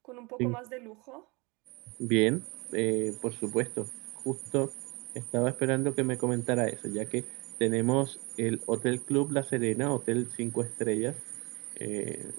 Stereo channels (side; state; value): left; quieter; 26.7 dB